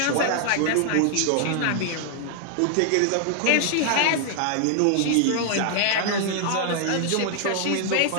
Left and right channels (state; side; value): different; both; correlation 0.00